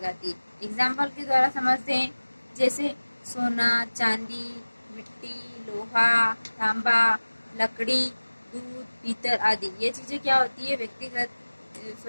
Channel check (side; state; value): both; inverted; correlation -1.00